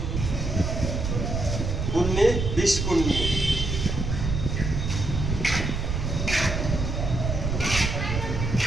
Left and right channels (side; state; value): right; noise; rumble, 2 dB below the sound